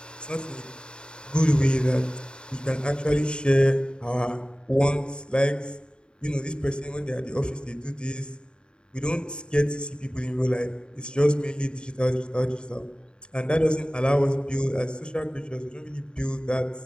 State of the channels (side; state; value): right; late; 0.050 ms